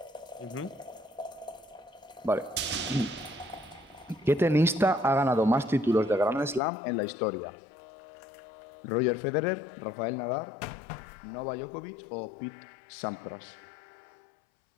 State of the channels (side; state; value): right; drops out; at 6.6 s